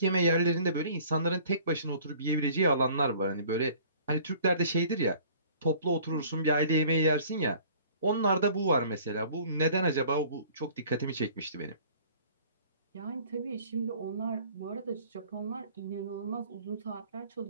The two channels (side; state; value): both; inverted; correlation -0.51